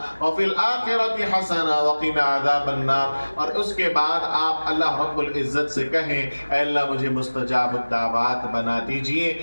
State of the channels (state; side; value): inverted; both; correlation -1.00